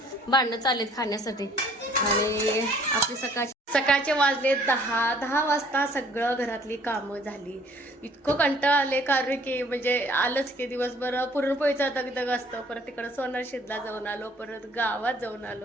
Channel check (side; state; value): both; normal; correlation 0.58